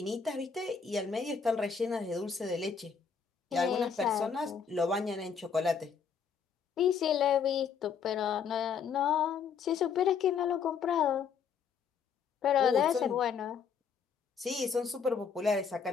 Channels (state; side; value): quieter; right; 6.5 dB